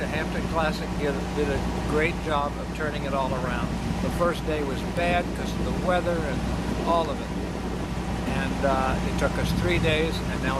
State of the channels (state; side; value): identical; both; correlation 1.00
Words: Hampton Classic did a great job of turning it all around. The first day was bad because of the weather and all of it. And it took us 3 days, and now